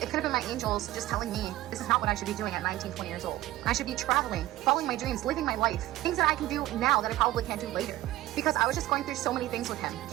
could have been my angels just telling me this is not what I should be doing at 19, 20 years old. I should be traveling, following my dreams, living my life. Things that I can do now that I probably can't do later. Because I was just going through so many things with him.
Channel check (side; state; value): left; quieter; 15.7 dB